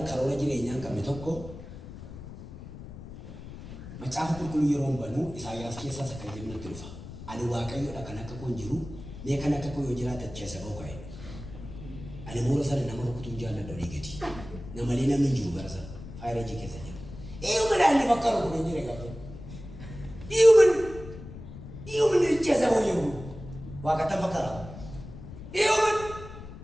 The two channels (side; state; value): left; noise; rumble, 13 dB below the sound